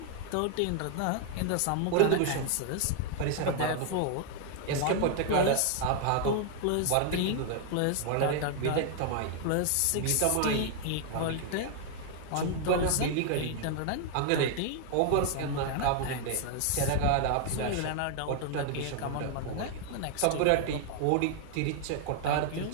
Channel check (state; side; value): different; both; correlation 0.00